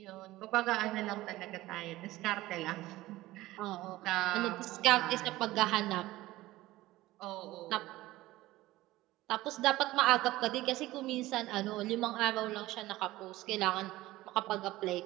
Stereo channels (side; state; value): left; quieter; 17.4 dB